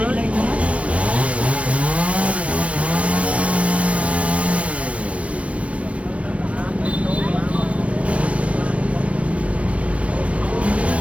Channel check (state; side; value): late; left; 0.063 ms